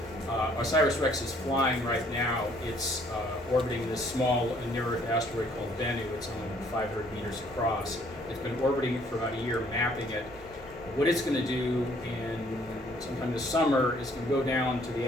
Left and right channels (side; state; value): both; normal; correlation 0.62